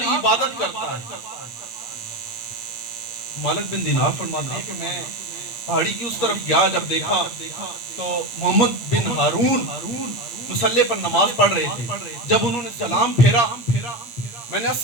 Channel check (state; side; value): late; right; 8.7 ms